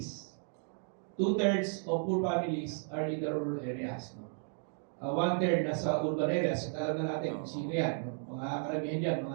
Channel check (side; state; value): left; silent; 55 dB below the other